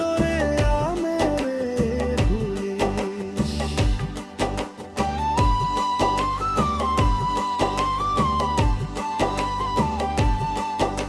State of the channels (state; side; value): identical; both; correlation 1.00